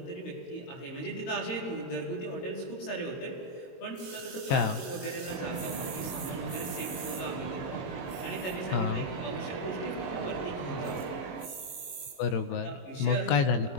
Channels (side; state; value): right; late; 22 ms